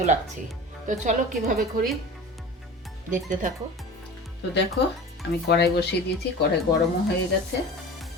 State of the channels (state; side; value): normal; both; correlation 0.36